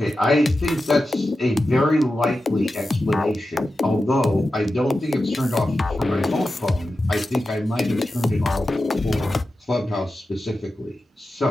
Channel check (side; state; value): both; normal; correlation 0.92